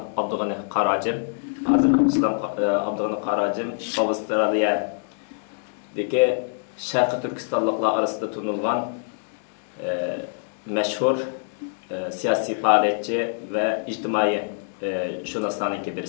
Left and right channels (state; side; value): silent; right; 61 dB below the other